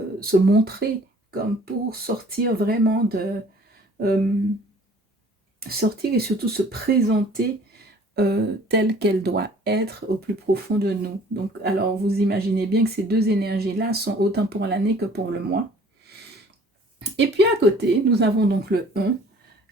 se montrer, comme pour sortir vraiment sortir et surtout se présenter telle qu'elle doit être au plus profond de nous. Donc, alors, vous imaginez bien que ces deux énergies-là sont autant pour l'année que pour le mois. Et puis à côté, nous avons donc le 1,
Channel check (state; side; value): normal; both; correlation 0.53